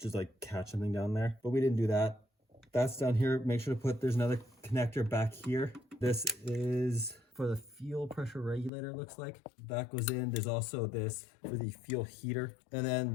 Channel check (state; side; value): drops out; right; at 8.7 s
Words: like catch something down there, but we didn't do that. That's down here. Make sure to put, there's another connector back here. This is for the fuel pressure regulator, it looks like. That goes in. There's also this for the fuel heater. And